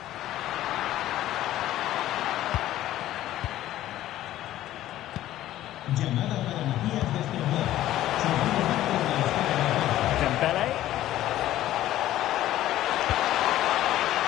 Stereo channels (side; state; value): right; quieter; 13.8 dB